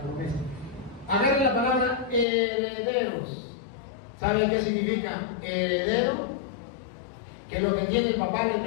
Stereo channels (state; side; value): drops out; right; at 2.2 s